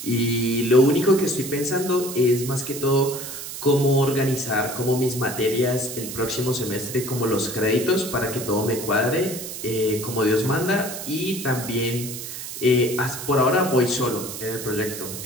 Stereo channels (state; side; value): noise; right; hiss, 9 dB below the sound